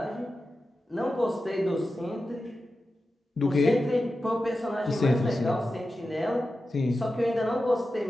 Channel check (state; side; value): normal; both; correlation 0.92